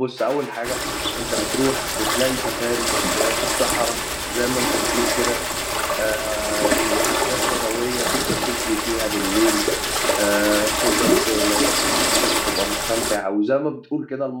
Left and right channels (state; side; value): identical; both; correlation 1.00